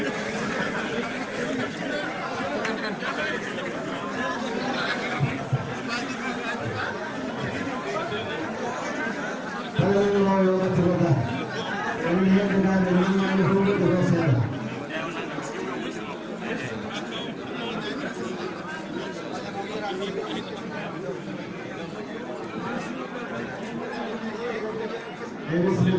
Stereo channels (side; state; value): both; identical; correlation 1.00